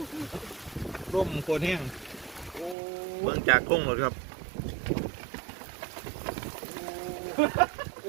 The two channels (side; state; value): left; drops out; at 2.8 s